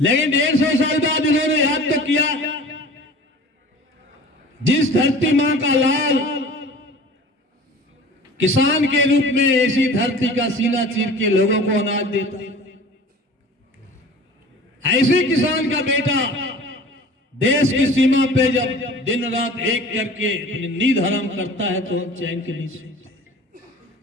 150 साल बाद इन्होंने याद तो किया, जिस धरती मां का लाल किसान के रूप में ऐसी धरती का सीना चीर के लोगों को अनाज देता, ऐसे किसान का बेटा देश की सीमा पे जब दिन रात एक करके अपनी नींद हराम करता है तो हम चैन के नहीं सोते,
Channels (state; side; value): normal; both; correlation 0.42